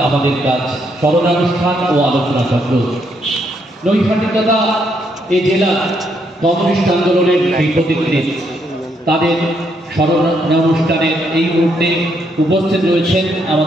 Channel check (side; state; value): both; normal; correlation 0.75